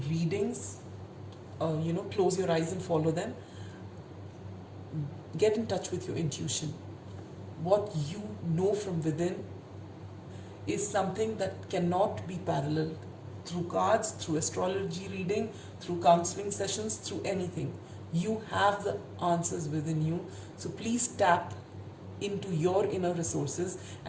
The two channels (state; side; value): identical; both; correlation 1.00